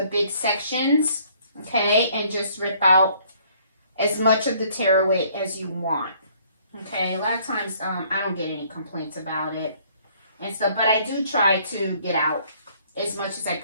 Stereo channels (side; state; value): both; inverted; correlation -0.61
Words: big sections, okay, and just rip out as much of the tearaway as you want, okay? A lot of times, I don't get any complaints about it and stuff, but I do try to get out as much as I